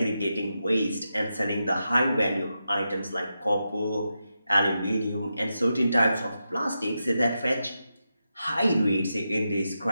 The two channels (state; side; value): inverted; both; correlation -0.88